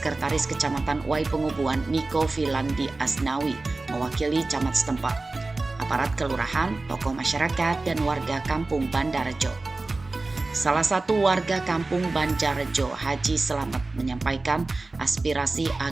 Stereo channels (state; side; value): quieter; left; 3.3 dB